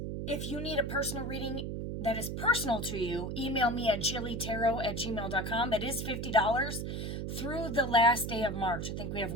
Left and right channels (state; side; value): noise; right; hum, 4 dB below the sound